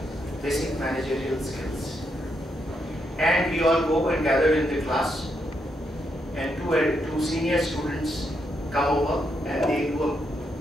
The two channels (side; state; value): both; normal; correlation 0.80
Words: basic managerial skills. And we all go and gather in the class, and two senior students come over and they do a